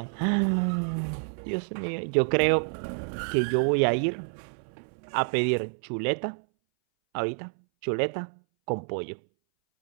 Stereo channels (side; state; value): left; silent; 59 dB below the other